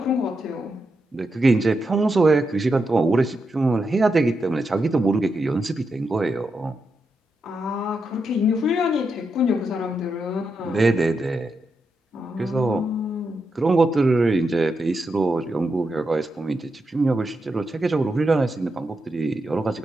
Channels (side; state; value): both; normal; correlation 0.85